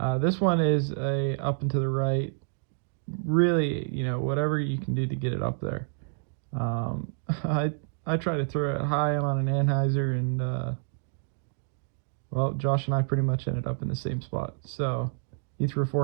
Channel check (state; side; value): silent; left; digital silence